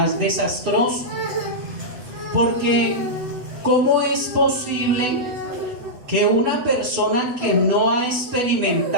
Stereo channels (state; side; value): late; left; 8.0 ms